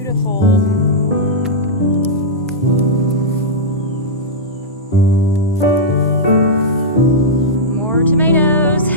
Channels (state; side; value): normal; both; correlation -0.10